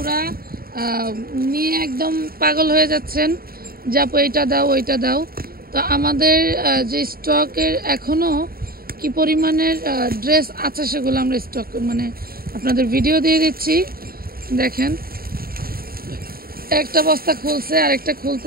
নিয়ে একদম পাগল হয়ে যাচ্ছেন যে আপু এইটা দাও ওইটা দাও। তো আমাদের যে স্টকের এখনও কি পরিমাণের ড্রেস আছে সেগুলো আমরা স্টক আপনাদের ভিডিও দিয়ে দিচ্ছি। দেখেন, একটা বস্তা খুলছে আর একটা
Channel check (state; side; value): late; left; 0.43 ms